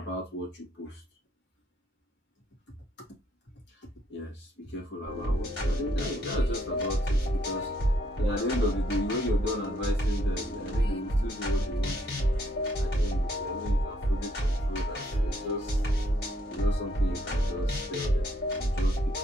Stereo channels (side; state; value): both; normal; correlation 0.71